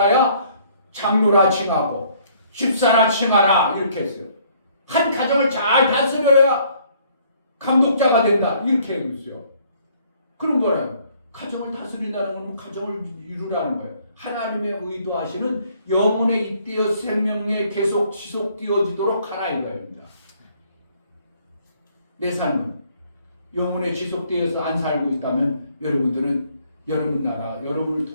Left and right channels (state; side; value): inverted; both; correlation -0.62